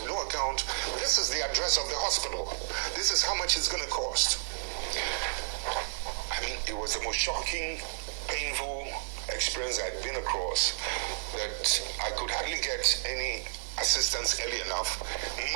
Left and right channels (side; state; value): left; silent; digital silence